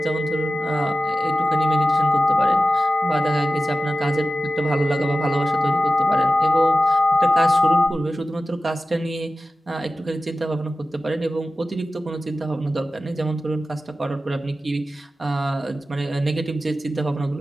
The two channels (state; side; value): normal; both; correlation 0.94